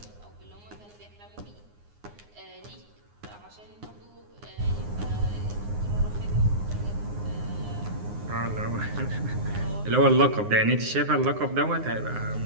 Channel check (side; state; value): left; late; 9.7 ms